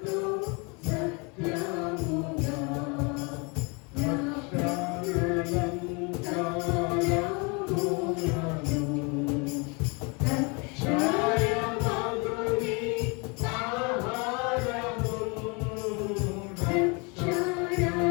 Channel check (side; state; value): right; quieter; 31.1 dB